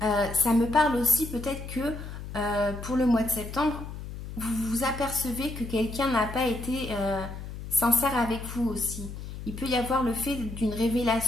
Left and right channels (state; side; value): noise; left; hum, 10 dB below the sound